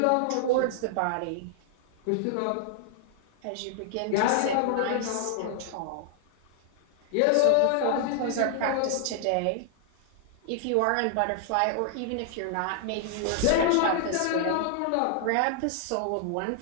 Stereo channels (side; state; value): both; different; correlation -0.01